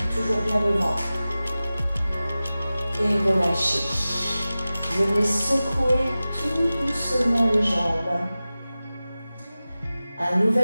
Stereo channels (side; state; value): both; inverted; correlation -0.96